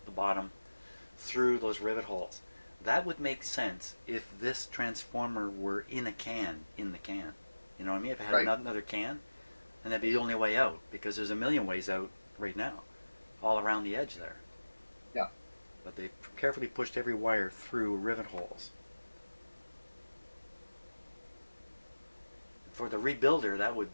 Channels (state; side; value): inverted; both; correlation -1.00